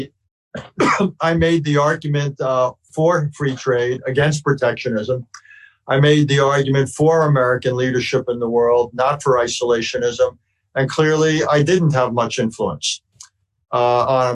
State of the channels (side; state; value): both; identical; correlation 1.00